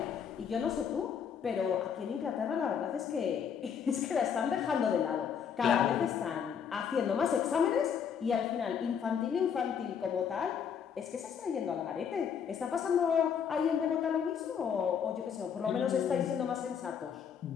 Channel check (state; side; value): quieter; right; 7.5 dB